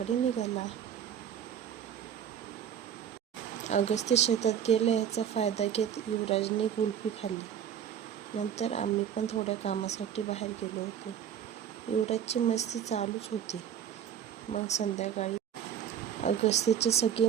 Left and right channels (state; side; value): quieter; left; 9.2 dB